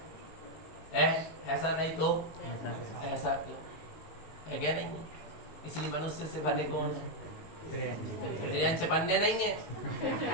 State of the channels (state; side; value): late; right; 19 ms